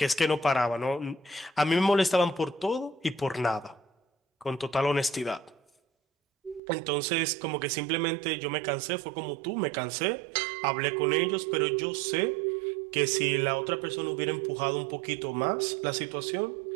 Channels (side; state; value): left; drops out; at 6.6 s